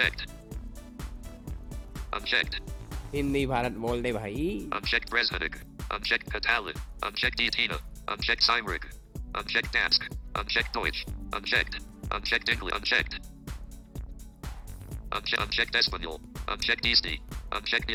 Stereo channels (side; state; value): both; identical; correlation 1.00